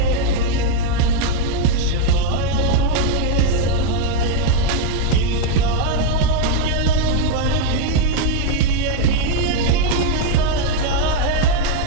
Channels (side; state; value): both; different; correlation 0.01